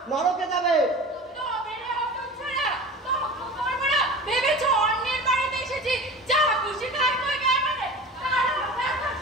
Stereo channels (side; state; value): both; normal; correlation 0.35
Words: নরকে যাবে। তবে রে হতচ্ছাড়া, তর্ক করবো না, ভেবেছো অন্যের বাড়িতে এসেছি, যা খুশি খাই কই গায়ে মানে, তার